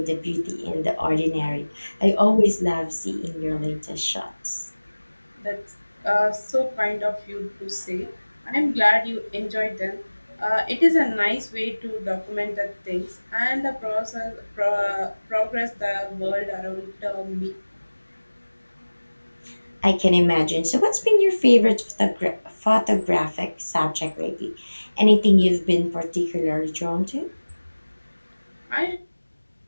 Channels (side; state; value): both; inverted; correlation -1.00